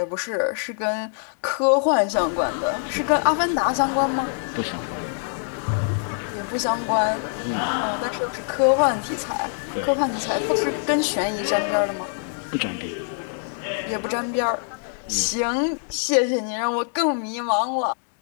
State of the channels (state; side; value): silent; right; digital silence